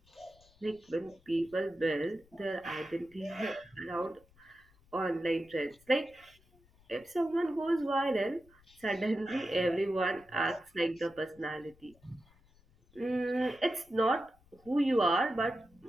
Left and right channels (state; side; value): noise; left; rumble, 29 dB below the sound